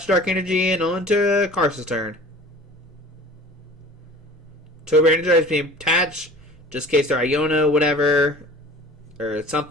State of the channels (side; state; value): both; normal; correlation 0.42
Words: Dark Energy and on to Carson's turn. Turbo Energize being attached, just in case they're Iono, whatever, or